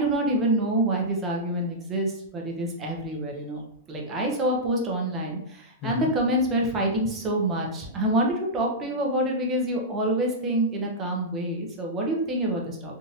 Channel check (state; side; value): normal; both; correlation -0.09